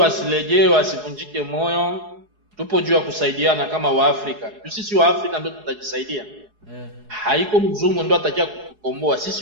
wasivunjike moyo. Tupo juu ya kusaidiana kama Waafrika. Sisi Waafrika ndio tutajisaidia. Haiko mzungu ndio atakia kukomboa.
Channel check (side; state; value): left; late; 4.8 ms